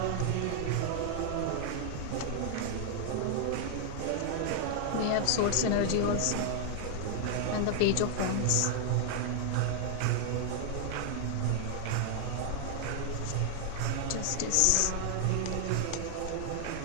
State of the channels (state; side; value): different; both; correlation 0.00